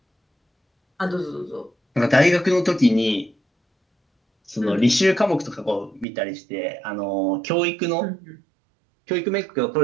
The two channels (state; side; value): drops out; left; at 6.1 s